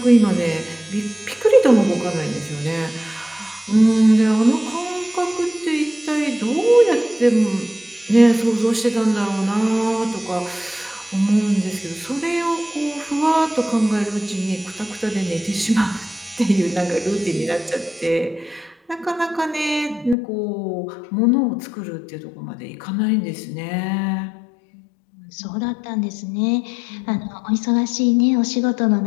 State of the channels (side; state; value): right; drops out; at 20.2 s